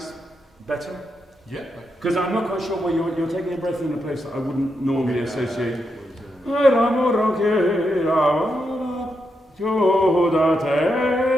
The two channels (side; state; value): both; normal; correlation 0.83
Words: better? Yeah. Because I'm not quite sure where you're taking a breath in a place that I wouldn't normally associate. L'amor io chiedo amore più da